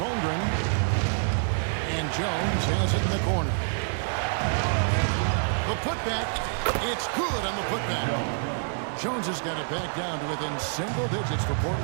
And Jones has it in the corner. The putback. It's good on the putback. Jones has got it back down to within single digits for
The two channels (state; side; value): silent; left; 60 dB below the other